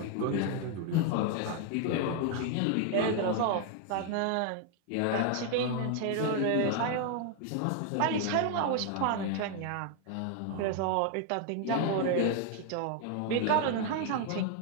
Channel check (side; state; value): both; different; correlation 0.00